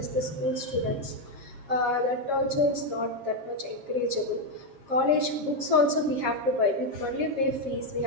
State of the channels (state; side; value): late; left; 7.4 ms